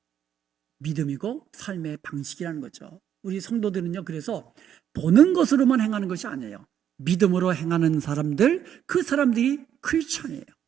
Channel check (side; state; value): left; quieter; 9.6 dB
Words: 믿음이고 삶의 방식이라는 거죠. 우리 성도들은요, 그래서 보는 것으로만 행하는 것이 아니에요. 믿음으로 행하는 사람들, 그 사람들이 크리스천이에요.